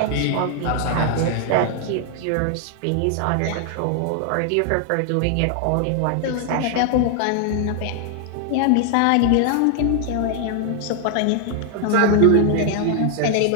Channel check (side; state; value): both; different; correlation 0.00